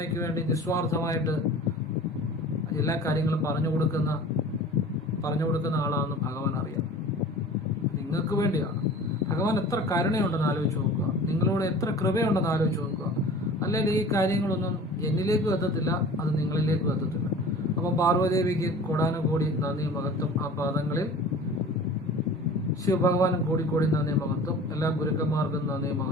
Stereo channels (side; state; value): both; normal; correlation 0.41